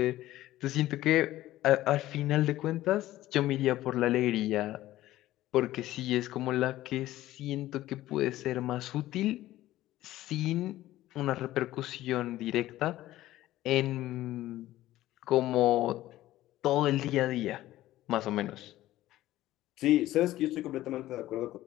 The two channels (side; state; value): right; quieter; 15.2 dB